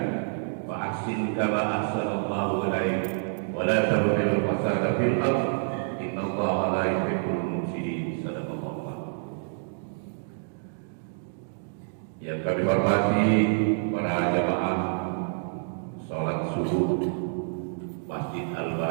wa ahsin kama ahsana Allahu ilaik wa la tabghil fasada fil ardh innallaha la yuhibbul mufsidin. Sadaqallahu. Yang kami hormati para jamaah salat subuh Masjid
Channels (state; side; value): silent; left; digital silence